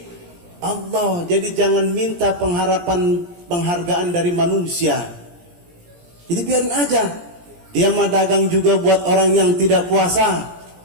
Allah. Jadi jangan minta penghargaan dari manusia. Jadi biarin aja. Dia mah dagang juga buat orang yang tidak puasa.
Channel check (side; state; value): left; late; 17 ms